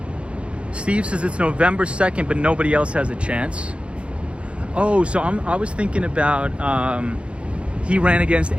Steve says it's November 2nd, but nobody else has a chance. Oh, so I was thinking about, he ran against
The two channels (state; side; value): late; left; 0.059 ms